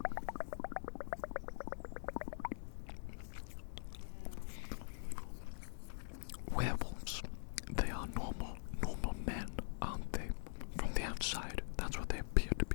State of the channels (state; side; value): silent; right; digital silence